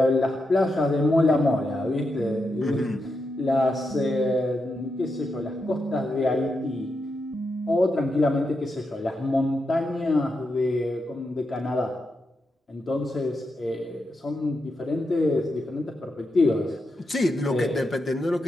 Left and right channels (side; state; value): both; normal; correlation 0.86